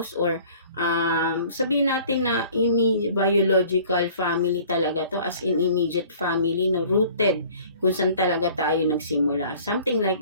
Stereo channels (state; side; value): inverted; both; correlation -0.50